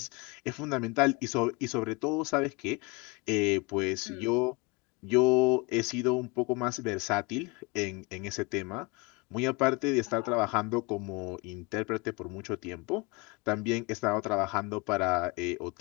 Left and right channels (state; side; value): quieter; right; 27.7 dB